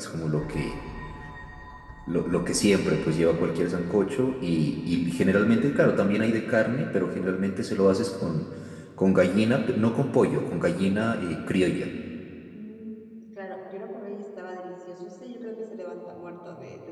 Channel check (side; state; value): both; identical; correlation 1.00